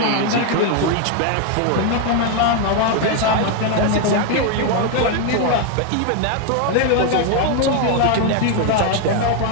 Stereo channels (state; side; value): different; both; correlation 0.01